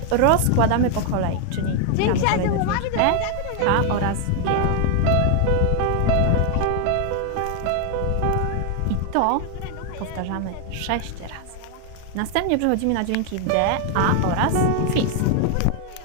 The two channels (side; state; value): both; different; correlation 0.00